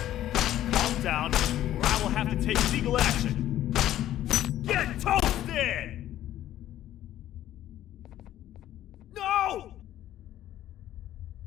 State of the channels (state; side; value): quieter; right; 12.9 dB